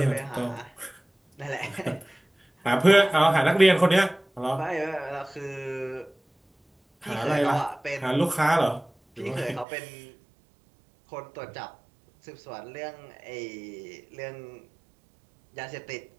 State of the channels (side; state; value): left; drops out; at 9.7 s